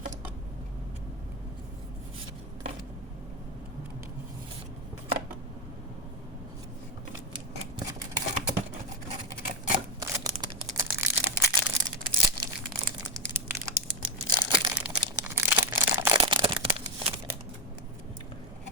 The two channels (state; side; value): normal; both; correlation 0.08